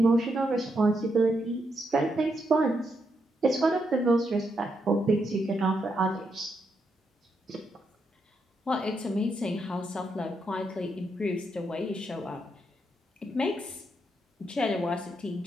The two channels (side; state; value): both; normal; correlation 0.81